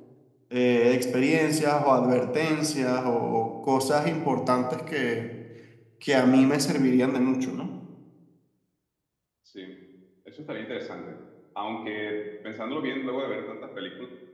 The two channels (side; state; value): both; identical; correlation 1.00